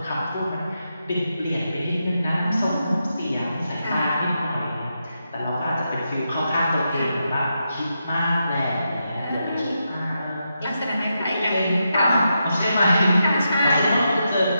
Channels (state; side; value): inverted; both; correlation -0.85